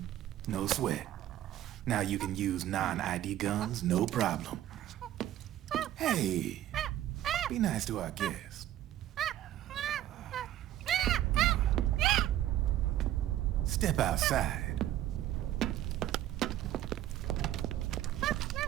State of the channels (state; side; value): quieter; left; 13.0 dB